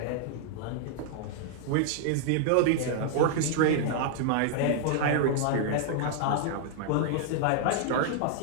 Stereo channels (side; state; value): both; different; correlation -0.01